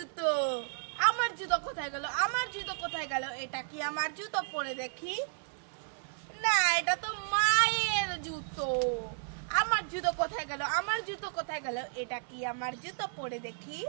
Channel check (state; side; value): silent; left; 56 dB below the other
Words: আমার জুতো কোথায় গেল? এটা কি আমার জুতো? পরে দেখি। না, এটা তো মায়ের জুতো। আমার জুতো কোথায় গেল? এটা কি আমার জুতো? পরে দেখি।